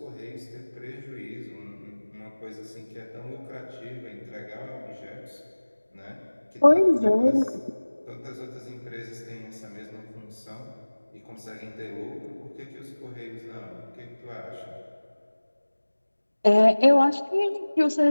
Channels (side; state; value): both; inverted; correlation -1.00